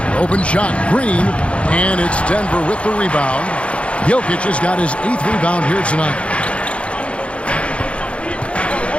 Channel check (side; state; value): right; late; 0.061 ms